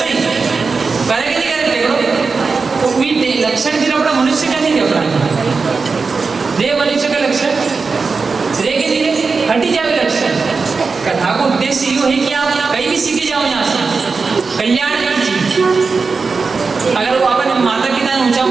करे कि नहीं करे टेकड़ो, तो भी लक्षण फिर अपना मनुष्य का नहीं दे, अपना दे मनुष्य का लक्षण धीरे धीरे हटी जाए लक्षण। कथा का उद्देश्य यो है कि आप कहीं भी सीखे जाओ, यहाँ से कल्याण की चीज। अगर वो अपन माता पिता ने ऊंचा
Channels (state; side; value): quieter; left; 4.6 dB